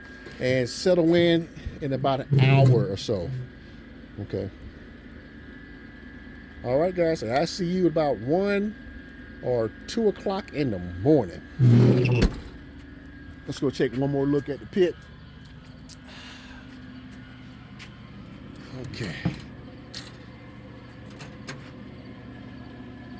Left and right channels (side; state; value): both; identical; correlation 1.00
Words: and settle in about an hour or so. Okay. All right, guys. So I see you about 1 or 2 o'clock in the morning. Let's go take one more look at the pit. Okay.